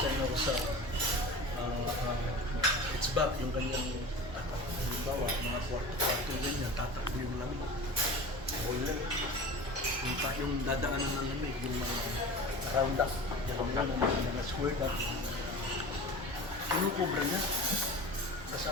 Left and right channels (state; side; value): normal; both; correlation 0.35